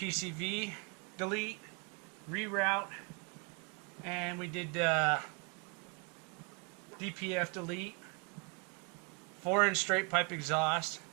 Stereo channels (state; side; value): quieter; left; 33.9 dB